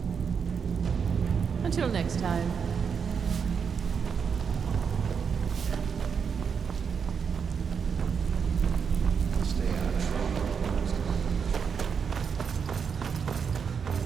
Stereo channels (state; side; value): quieter; left; 6.5 dB